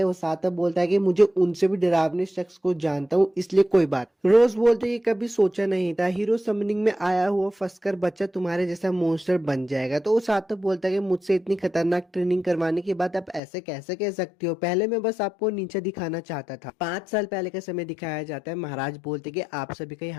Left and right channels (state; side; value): drops out; right; at 13.4 s